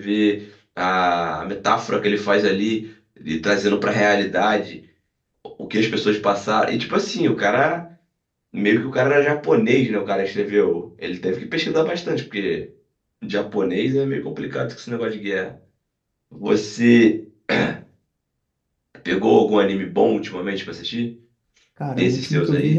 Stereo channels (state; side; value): identical; both; correlation 1.00